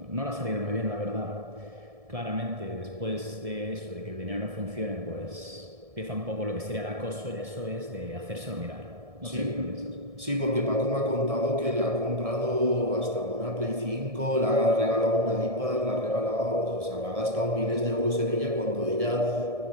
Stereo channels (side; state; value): left; late; 1.7 ms